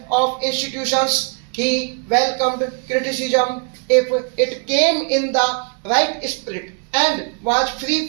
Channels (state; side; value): quieter; left; 39.1 dB